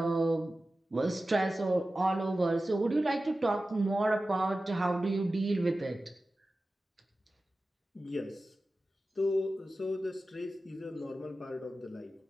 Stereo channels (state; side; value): normal; both; correlation 0.95